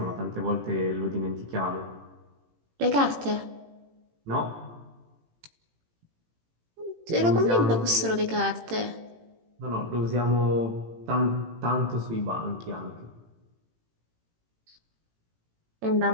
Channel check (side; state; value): left; late; 18 ms